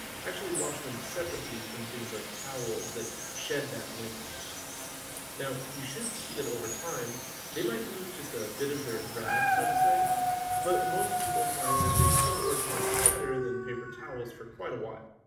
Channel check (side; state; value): both; identical; correlation 1.00